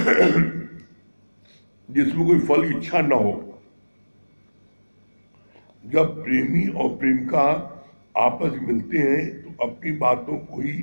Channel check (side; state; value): both; inverted; correlation -1.00